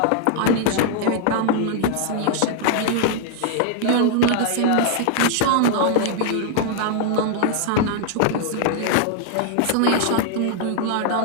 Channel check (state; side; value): different; both; correlation 0.00